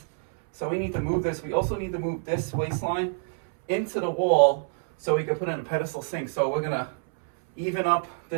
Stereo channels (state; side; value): silent; left; 61 dB below the other